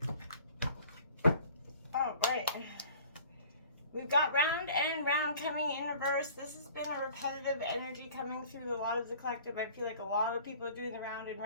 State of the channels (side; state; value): both; inverted; correlation -0.50